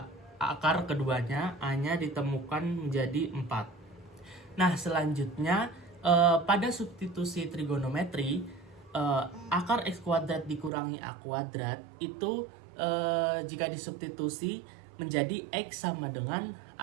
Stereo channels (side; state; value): left; drops out; at 10.7 s